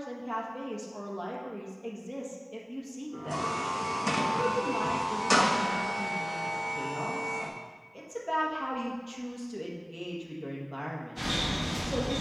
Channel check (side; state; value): both; identical; correlation 1.00